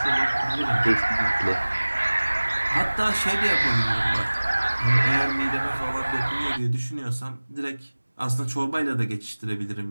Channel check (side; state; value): both; inverted; correlation -1.00